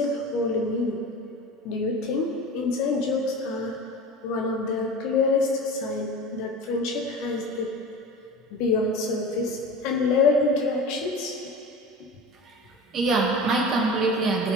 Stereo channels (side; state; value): both; normal; correlation 0.33